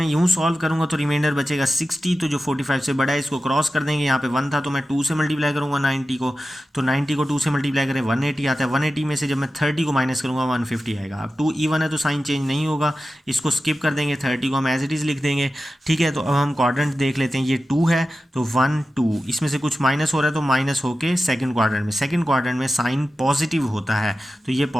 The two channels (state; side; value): normal; both; correlation 0.93